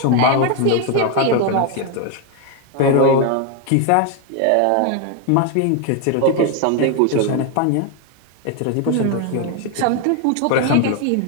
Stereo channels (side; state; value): both; different; correlation 0.01